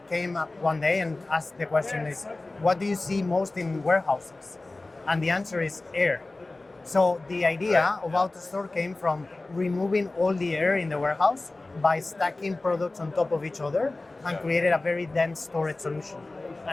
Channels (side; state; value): right; quieter; 3.1 dB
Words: came up one day and asked the question is, what do you see most in warehouses? And the answer is air. So the idea of AutoStore came from removing all the air in the warehouse by stacking products on top of each other and created a very dense storage solution.